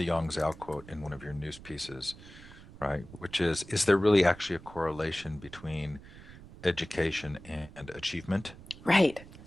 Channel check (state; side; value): noise; right; rumble, 18 dB below the sound